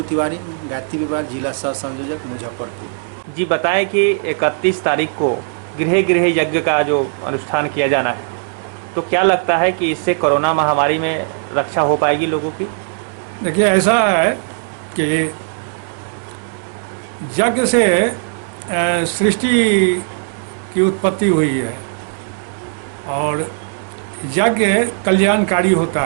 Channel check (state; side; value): silent; left; 67 dB below the other